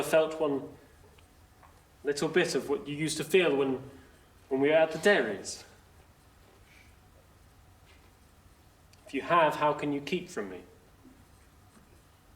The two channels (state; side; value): identical; both; correlation 1.00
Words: felt one little bit of what you used to feel when we were at the dairies? If you have, how can you keep from me?